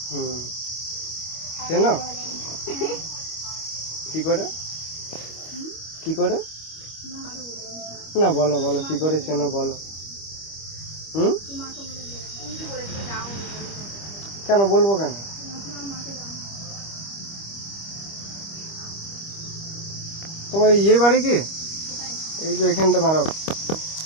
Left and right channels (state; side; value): late; right; 25 ms